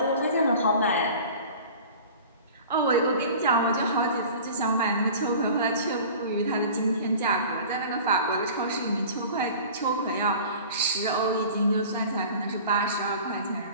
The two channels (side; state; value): both; inverted; correlation -0.42